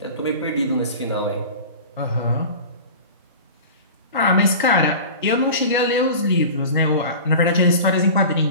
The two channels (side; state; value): both; inverted; correlation -0.35